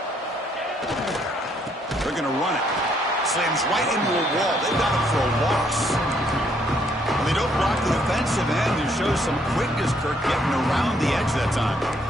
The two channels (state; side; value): normal; both; correlation 0.69